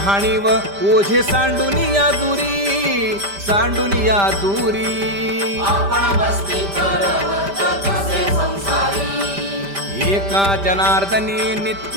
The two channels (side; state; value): left; late; 5.1 ms